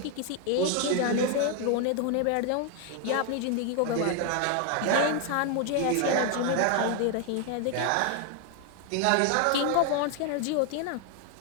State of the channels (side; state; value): both; different; correlation 0.01